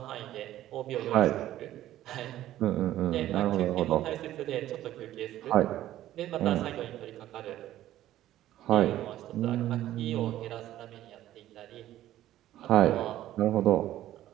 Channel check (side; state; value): left; quieter; 13.5 dB